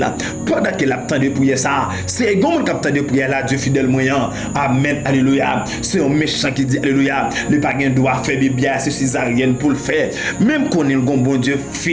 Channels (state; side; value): identical; both; correlation 1.00